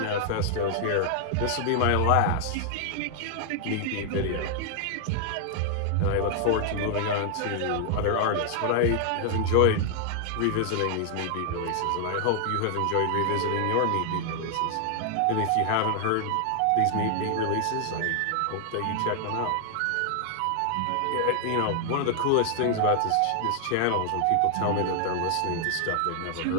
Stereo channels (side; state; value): both; different; correlation 0.00